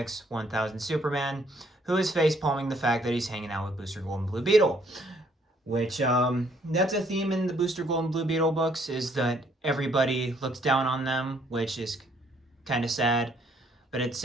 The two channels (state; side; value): normal; both; correlation 0.66